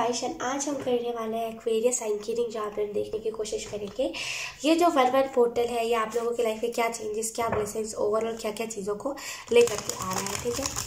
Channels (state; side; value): identical; both; correlation 1.00